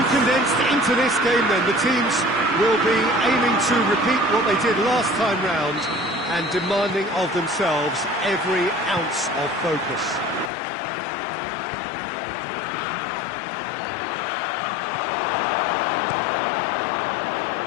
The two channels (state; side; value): drops out; right; at 10.5 s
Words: condensed into this game then, the teams will be aiming to repeat what they did last time round and demanding of themselves every ounce of focus.